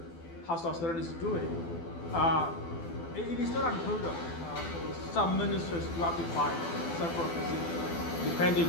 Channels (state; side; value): late; right; 12 ms